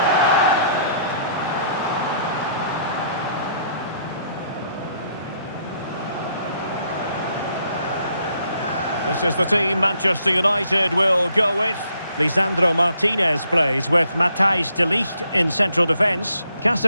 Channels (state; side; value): inverted; both; correlation -0.69